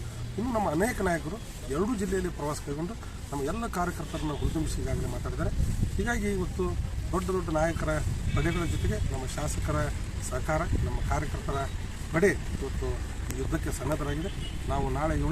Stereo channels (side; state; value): both; identical; correlation 1.00